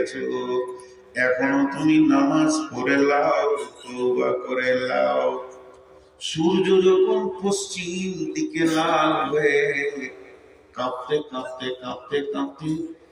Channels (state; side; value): identical; both; correlation 1.00